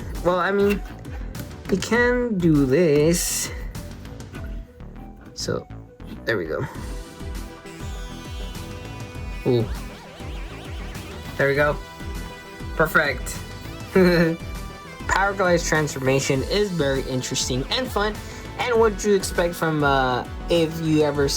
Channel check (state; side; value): identical; both; correlation 1.00